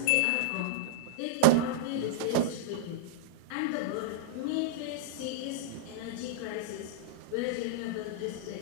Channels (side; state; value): both; different; correlation -0.02